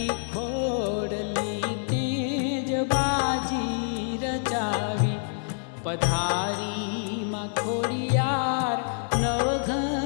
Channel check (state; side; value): silent; right; digital silence